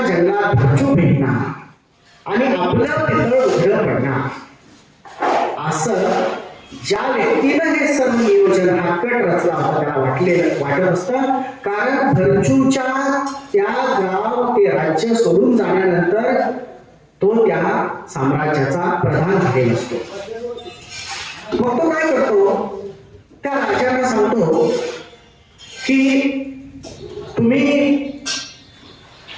जंगलात भरचू भेटणार आणि आपलं पितळ उघडं पडणार. असं ज्या व्यक्तीनं हे सर्व नियोजन हा कट रचला होता त्याला वाटत असतं. कारण भरचूच्या त्या गाव ते राज्य सोडून जाण्यानंतर तो त्या साम्राज्याचा प्रधान झालेला असतो. मग तो काय करतो, त्या राजांना सांगतो की तुम्ही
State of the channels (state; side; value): identical; both; correlation 1.00